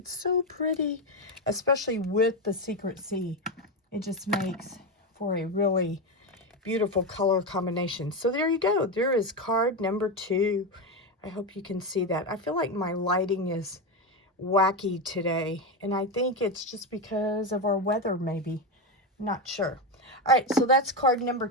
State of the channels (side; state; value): both; normal; correlation 0.12